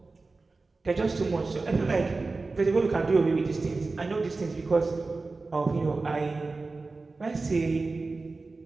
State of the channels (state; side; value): quieter; left; 3.7 dB